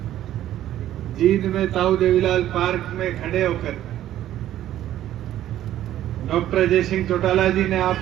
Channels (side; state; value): left; quieter; 12.6 dB